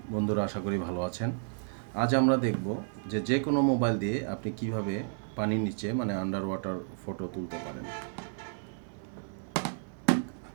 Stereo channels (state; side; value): silent; left; digital silence